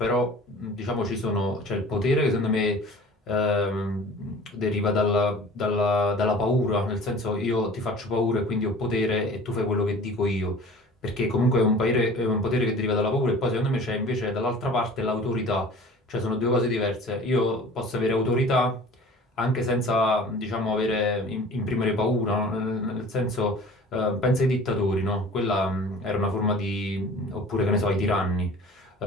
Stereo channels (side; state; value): both; normal; correlation 0.44